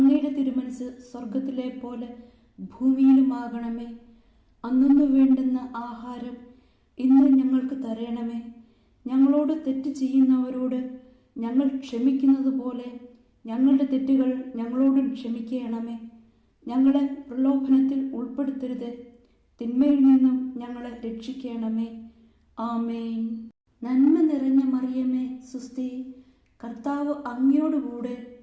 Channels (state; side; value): identical; both; correlation 1.00